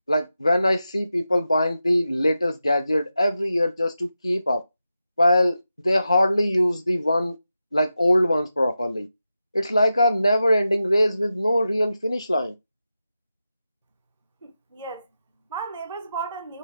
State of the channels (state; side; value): inverted; both; correlation -0.90